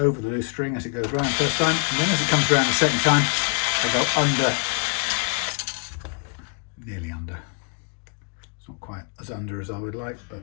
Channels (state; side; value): quieter; right; 38.4 dB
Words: the loose string as it goes round first time, and then as it comes around the second time, I go under, nearly under. It's not quite as under as I would like, but